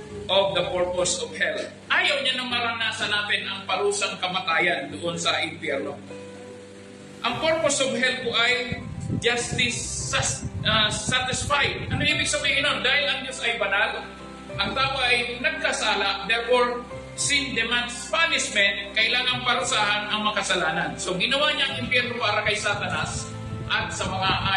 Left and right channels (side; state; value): both; identical; correlation 1.00